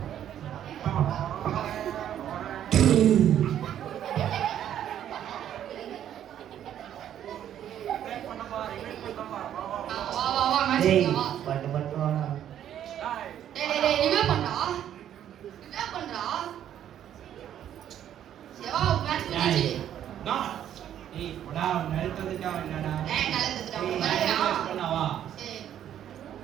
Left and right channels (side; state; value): left; quieter; 10.5 dB